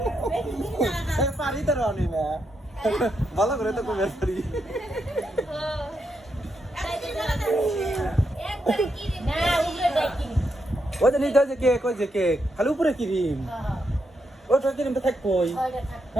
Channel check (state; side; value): normal; both; correlation 0.82